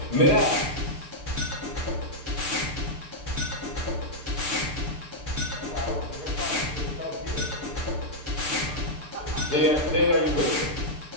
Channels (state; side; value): late; left; 6.8 ms